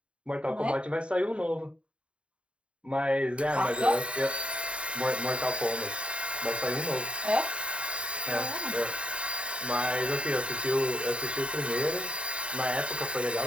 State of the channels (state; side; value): late; left; 0.058 ms